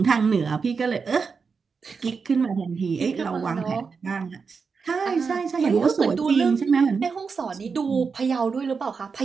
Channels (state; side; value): quieter; left; 5.2 dB